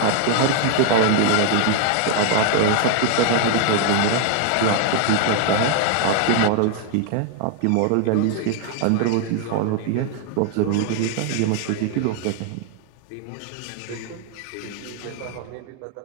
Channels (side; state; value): both; different; correlation 0.00